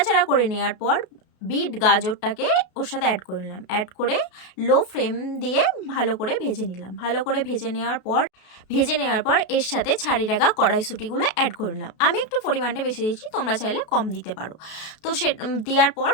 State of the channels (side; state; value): right; late; 32 ms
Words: করে নেওয়ার পর বিট গাজরটাকে ওর সাথে অ্যাড করে নিলাম। অ্যাড করে লো ফ্লেম দিয়ে ভালো করে ভেজে নিলাম। ভালো করে ভেজে নেওয়ার পর এর সাথে ছাড়িয়ে রাখা কড়াইশুঁটিগুলো অ্যাড করে নিলাম। আমি একটু পরিমাণটা বেশি দিয়েছি, তোমরা চাইলে কম দিতে পারো। তো সে দেওয়ার পর